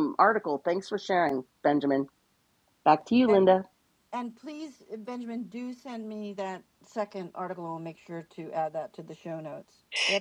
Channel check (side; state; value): both; identical; correlation 1.00